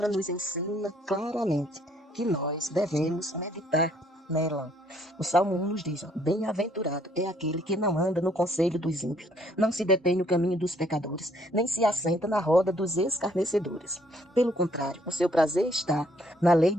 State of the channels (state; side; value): normal; both; correlation 0.65